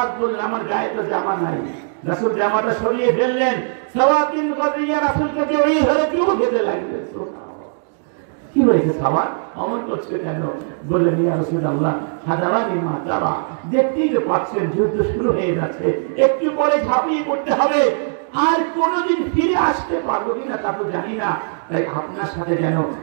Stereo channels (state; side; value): silent; left; digital silence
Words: বললেন, আমার গায়ে তো জামা নাই। রাসূল জামাটা সরিয়ে ফেললেন। সাওয়াদ বিন গাজিয়া রাসূলকে জড়িয়ে ধরে চুমু খেতে লাগলেন। কি হয়েছে সাওয়াদ, অমন করছে কেন? বললেন, ইয়া রাসূলুল্লাহ, হাদারানি মা তারা, দেখতেই তো পাচ্ছেন যুদ্ধ শুরু হয়ে যাচ্ছে, একটু পরে ঝাঁপিয়ে পড়তে হবে, আর কোনোদিন ফিরে আসতে পারবো কিনা তা তো জানি না, তাই আপনার সাথে যেন